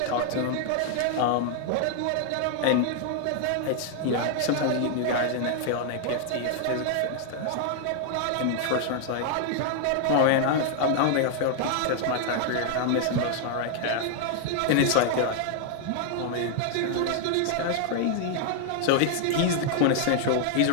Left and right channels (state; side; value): different; both; correlation 0.00